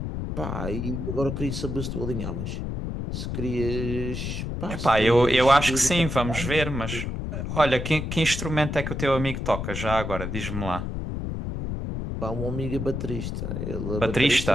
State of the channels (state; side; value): noise; left; rumble, 4 dB below the sound